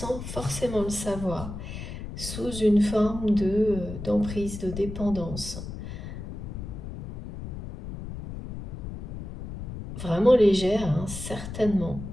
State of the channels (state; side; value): noise; left; rumble, 9 dB below the sound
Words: forcément le savoir, sous une forme d'emprise, de dépendance. Vraiment légère, hein, certainement,